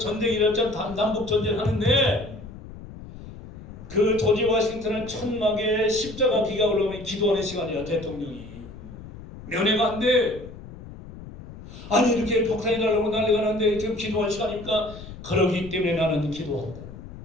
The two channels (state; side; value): noise; left; rumble, 15 dB below the sound